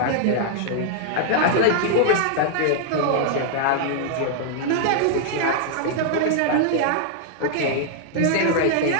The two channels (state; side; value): different; both; correlation -0.01